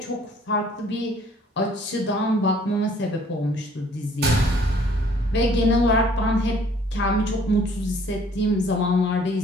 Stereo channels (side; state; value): both; normal; correlation 0.58